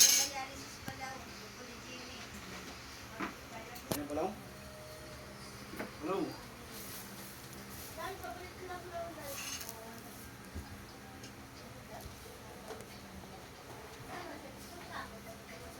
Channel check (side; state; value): both; identical; correlation 1.00